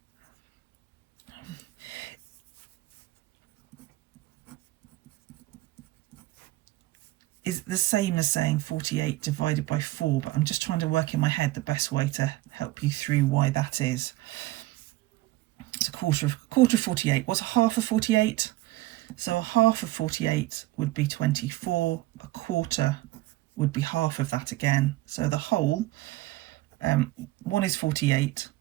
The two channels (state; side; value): quieter; left; 17.9 dB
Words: is the same as saying 48 divided by 4, but I'm just trying to work in my head the best way to help you through why that is. It's a quarter of 48. What's a half of 48? So a half of 48 would be 24. A quarter would be half of that again. So the whole, 1 is 48.